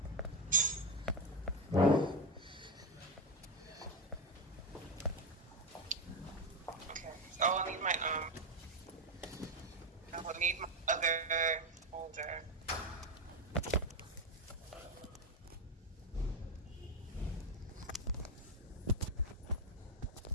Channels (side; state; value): both; normal; correlation 0.09